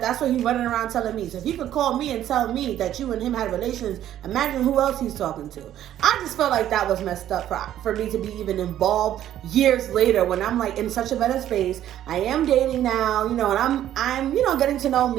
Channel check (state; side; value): quieter; left; 11.8 dB